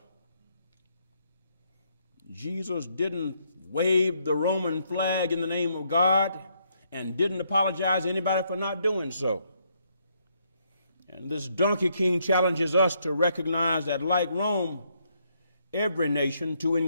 Jesus didn't wave the Roman flag in the name of God and didn't apologize to anybody for not doing so. And this donkey king challenges us to recognize that, like Rome, every nation, to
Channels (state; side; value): inverted; both; correlation -0.73